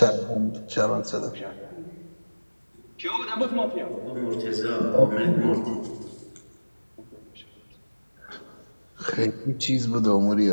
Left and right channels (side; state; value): both; inverted; correlation -1.00